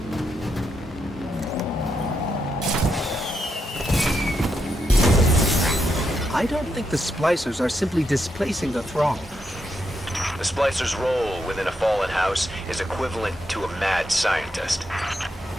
I don't think the splicers are simply displacing the thrall. The splicer's role within a fallen house is equivalent to a mad scientist.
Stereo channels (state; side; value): normal; both; correlation 0.82